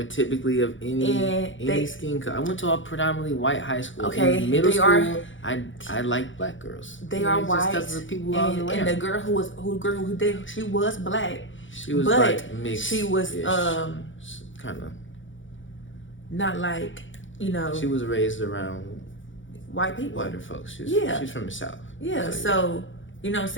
typically of any skin color. I went to a predominantly white high school. Okay, in middle they school, are. I liked black girls. They are Just white. 'cause of the people I was around. And the girl who dated, she was black. She was but like mixed. she was kind of not like, you know. She was raised around white people. Whiter folks. She's from the South. Yeah, so you know what I'm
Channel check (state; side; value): late; right; 0.56 ms